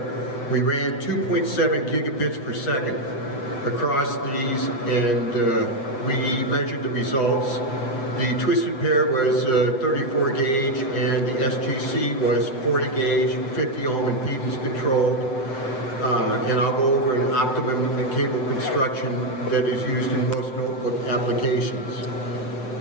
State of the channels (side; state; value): right; late; 7.5 ms